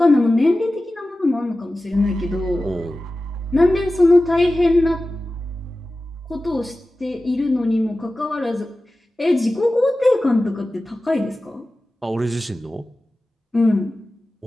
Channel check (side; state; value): both; normal; correlation 0.95